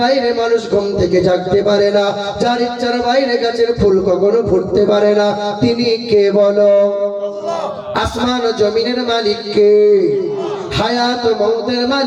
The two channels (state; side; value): identical; both; correlation 1.00